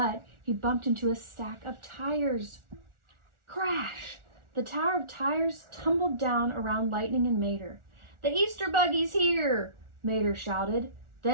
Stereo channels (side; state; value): left; late; 1.4 ms